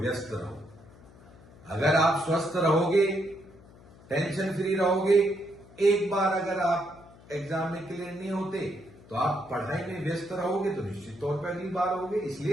रहो। अगर आप स्वस्थ रहोगे, टेंशन फ्री रहोगे, एक बार अगर आप एग्जाम में क्लियर नहीं होते तो आप पढ़ाई में व्यस्त रहोगे तो निश्चित तौर पर अगली बार होगे।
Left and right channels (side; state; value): left; noise; hum, 23 dB below the sound